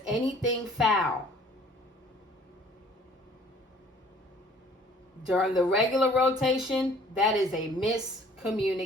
anything foul during the regular rotation, that is a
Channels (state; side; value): normal; both; correlation 0.54